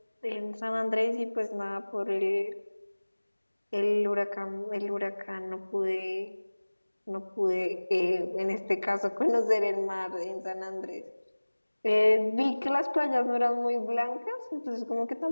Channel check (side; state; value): both; inverted; correlation -1.00